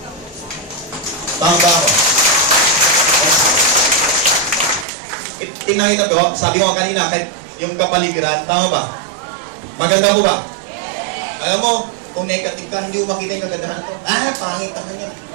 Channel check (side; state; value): left; drops out; at 4.9 s